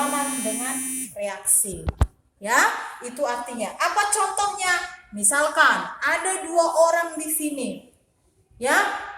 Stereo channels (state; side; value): identical; both; correlation 1.00